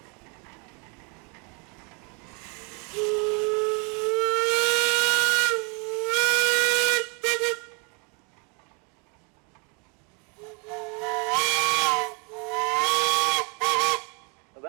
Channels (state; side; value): quieter; left; 34.0 dB